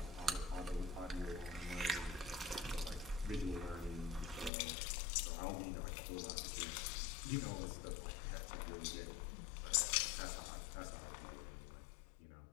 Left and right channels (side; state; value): right; drops out; at 4.5 s